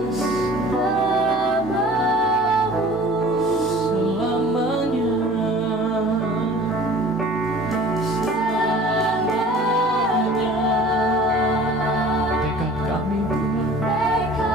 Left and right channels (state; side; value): normal; both; correlation 0.46